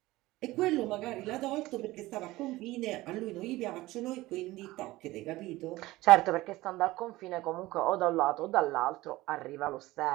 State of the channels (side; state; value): left; quieter; 18.4 dB